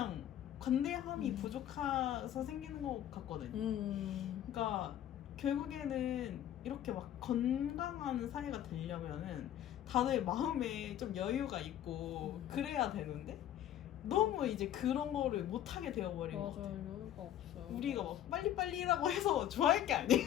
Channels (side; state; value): right; quieter; 11.4 dB